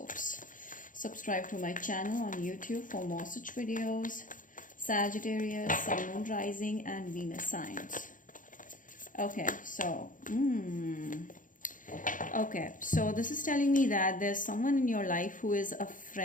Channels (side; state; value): right; late; 0.38 ms